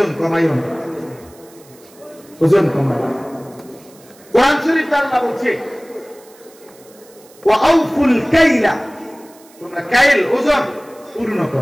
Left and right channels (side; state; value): right; noise; hiss, 26 dB below the sound